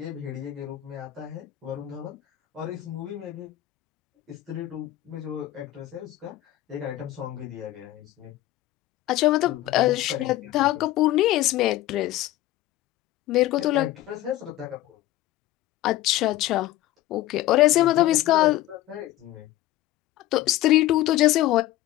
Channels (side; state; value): right; quieter; 15.4 dB